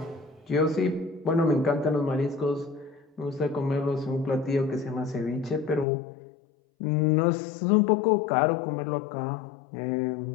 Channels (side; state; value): right; drops out; at 5.9 s